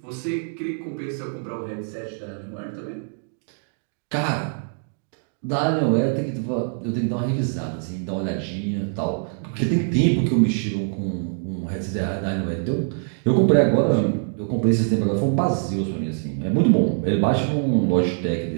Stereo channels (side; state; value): left; silent; digital silence